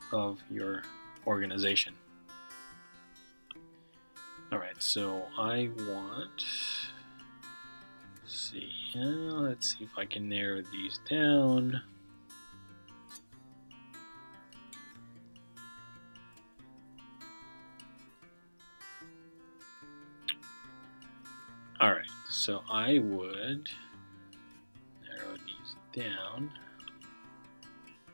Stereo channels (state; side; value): inverted; both; correlation -1.00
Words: of your organization. All right, so I want, let's see if I can narrow these down. So I would narrow these down.